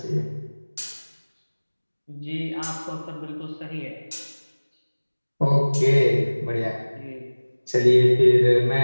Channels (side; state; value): both; inverted; correlation -1.00